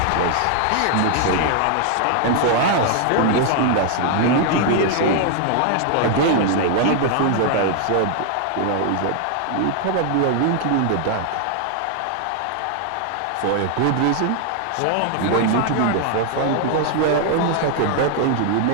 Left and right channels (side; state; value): both; different; correlation 0.00